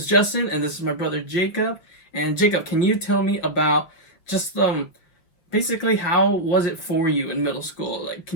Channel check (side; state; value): right; late; 5.5 ms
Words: Justin, and this is my brother Jacob. And Jacob, can you tell me about just basically, how was it for you in middle school? Like,